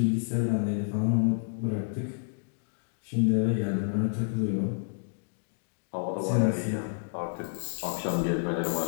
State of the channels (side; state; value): right; silent; digital silence